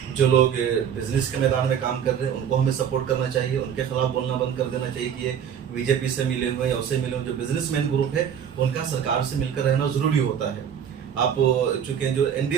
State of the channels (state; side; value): quieter; left; 8.4 dB